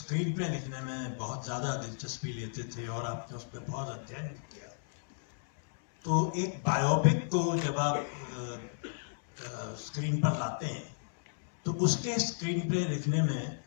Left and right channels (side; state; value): right; silent; 55 dB below the other